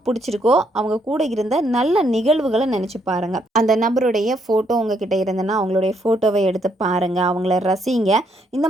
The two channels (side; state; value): both; normal; correlation 0.73